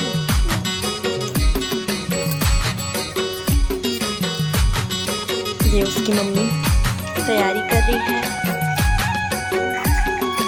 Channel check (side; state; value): both; identical; correlation 1.00